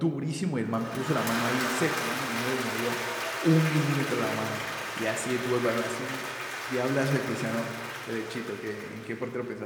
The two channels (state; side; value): identical; both; correlation 1.00